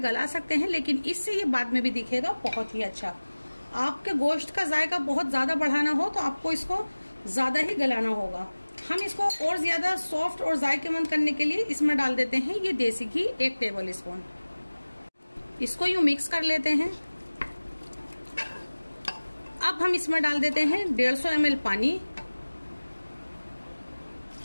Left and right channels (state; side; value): inverted; both; correlation -1.00